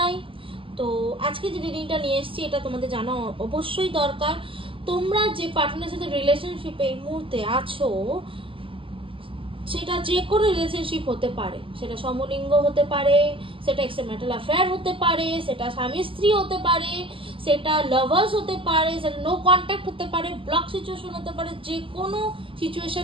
তো আজকে যে রিডিংটা নিয়ে এসেছি এটা তোমাদের জানা অবশ্যই দরকার। তোমরা যে পার্টনারের সাথে রিলেশনশিপে এই মুহূর্তে আছো, সেটা যে কোনো রিলেশনশিপ হতে পারে, সেটা সমলিঙ্গ হতে পারে, সেটা এক্সট্রাম্যারিটাল অ্যাফেয়ার হতে পারে, সেটা স্বামী স্ত্রী হতে পারে, সেটা লাভার্স হতে পারে, সেটা নো কন্ট্যাক্ট হতে পারে, ব্লক সিচুয়েশন হতে পারে। যে কোনো সিচুয়েশন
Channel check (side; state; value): left; late; 0.25 ms